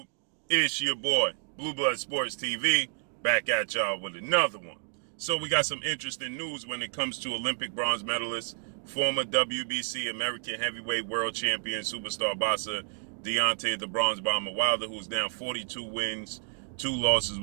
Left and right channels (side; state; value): left; silent; digital silence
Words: It's your boy, Blue Blood Sports TV, back at y'all with another one. So we got some interesting news when it comes to Olympic bronze medalist, former WBC American Heavyweight World Champion Superstar boxer Deontay the Bronze Bomber Wilder, who's now 42 wins, 2 losses,